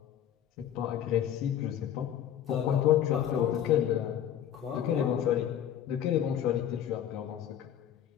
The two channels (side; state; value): right; quieter; 10.2 dB